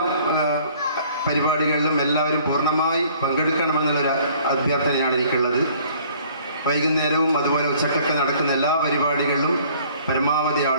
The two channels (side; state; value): both; inverted; correlation -0.56